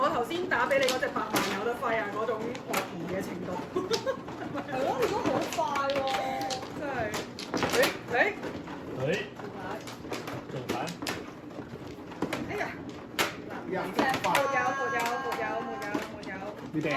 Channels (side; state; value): both; identical; correlation 1.00